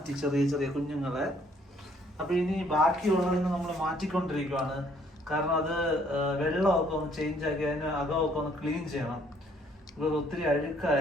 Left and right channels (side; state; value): both; normal; correlation 0.64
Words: ചെറിയ ചെറിയ കുഞ്ഞുങ്ങളെ. അപ്പൊ ഇനി ബാക്കിയുള്ളതിന് നമ്മൾ മാറ്റിക്കൊണ്ടിരിക്കുവാണ്. കാരണം അത് വെള്ളമൊക്കെ ഒന്ന് ചേഞ്ച് ആക്കി അതിന് അകമൊക്കെ ഒന്ന് ക്ലീൻ ചെയ്യണം. ഇപ്പൊ ഒത്തിരി